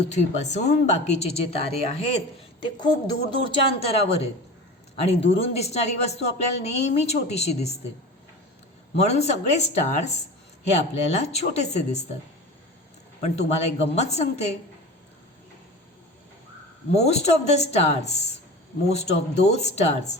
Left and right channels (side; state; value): both; normal; correlation 0.34